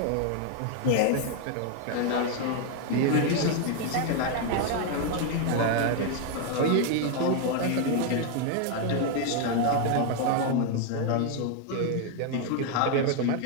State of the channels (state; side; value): different; both; correlation 0.01